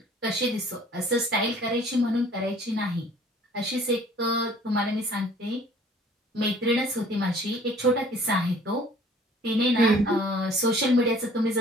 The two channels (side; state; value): both; normal; correlation 0.53